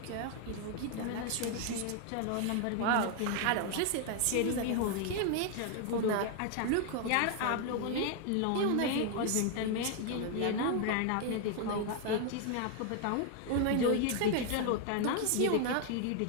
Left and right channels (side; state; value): both; different; correlation 0.00